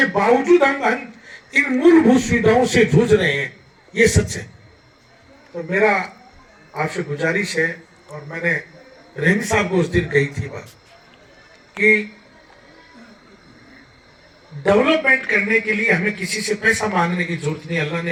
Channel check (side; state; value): both; identical; correlation 1.00